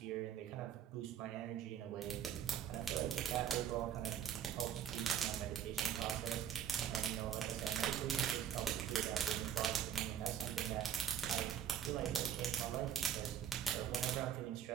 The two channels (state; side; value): quieter; left; 8.9 dB